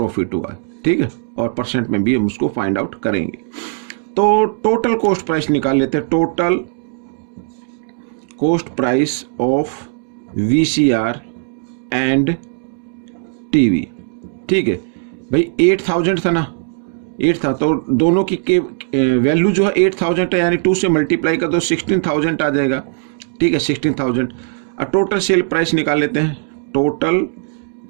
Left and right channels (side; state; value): left; silent; 61 dB below the other